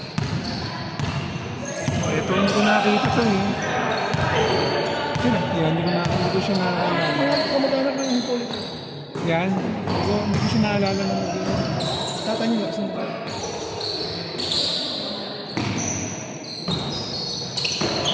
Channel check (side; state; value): both; identical; correlation 1.00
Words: Ito, hindi ko nakakita ito eh. sino? Yan, hindi ko siya naalala. Mga kamag-anak ng Hippolyte. Yan, hindi ko siya naalala na mag-iwan. Tata niyo, sino ba?